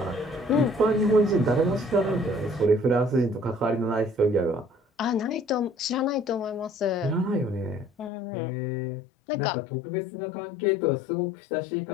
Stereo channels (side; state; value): right; drops out; at 8.1 s